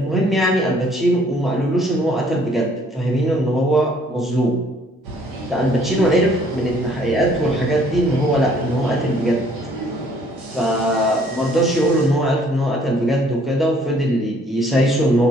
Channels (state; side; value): normal; both; correlation 0.61